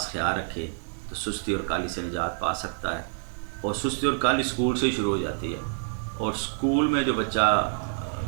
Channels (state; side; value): silent; left; 60 dB below the other